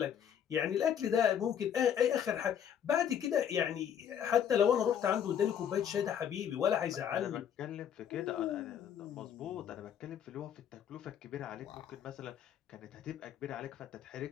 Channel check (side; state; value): right; quieter; 9.0 dB